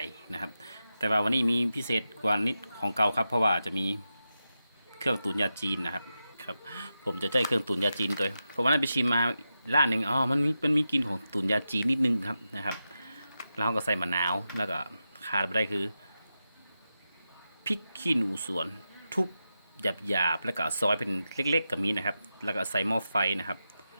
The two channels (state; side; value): inverted; both; correlation -0.90